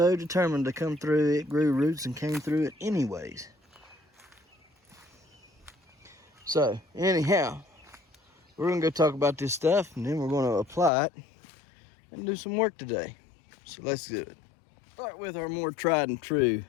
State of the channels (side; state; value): right; drops out; at 10.9 s